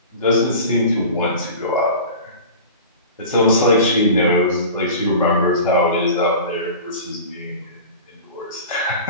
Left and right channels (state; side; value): inverted; both; correlation -0.36